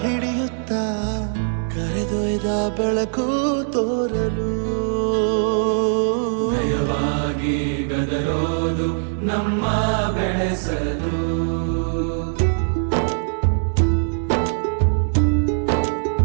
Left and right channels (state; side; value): silent; left; digital silence